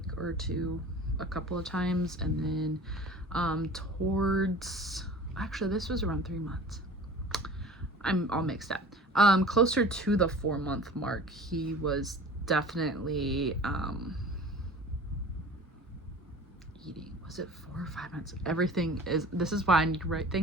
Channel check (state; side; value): normal; both; correlation 0.42